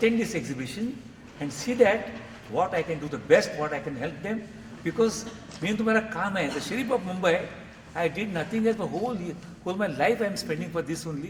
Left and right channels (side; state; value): both; identical; correlation 1.00